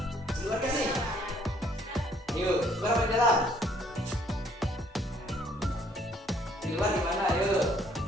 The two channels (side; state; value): both; normal; correlation 0.63